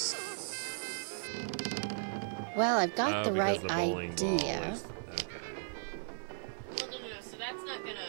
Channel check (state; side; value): silent; left; 54 dB below the other